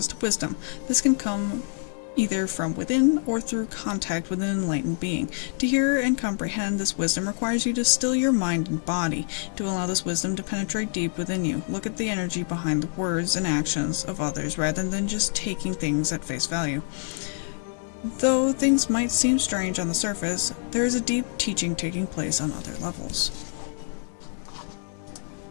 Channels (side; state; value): right; silent; 61 dB below the other